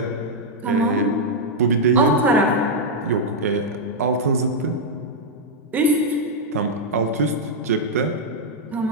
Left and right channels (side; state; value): both; normal; correlation -0.02